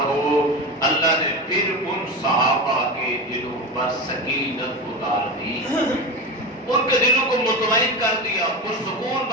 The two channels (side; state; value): both; normal; correlation 0.23